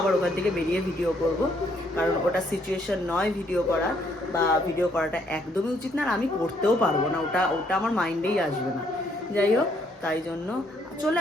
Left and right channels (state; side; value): normal; both; correlation 0.69